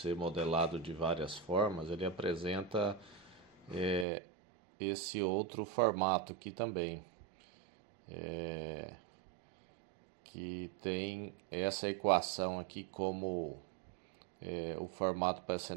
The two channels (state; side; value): drops out; left; at 4.0 s